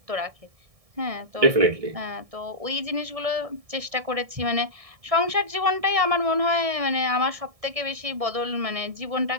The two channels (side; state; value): left; late; 1.7 ms